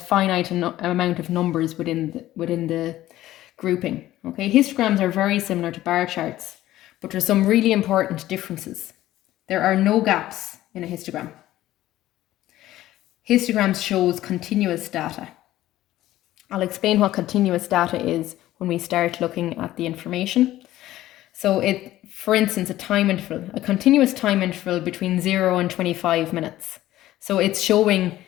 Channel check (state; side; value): quieter; right; 14.7 dB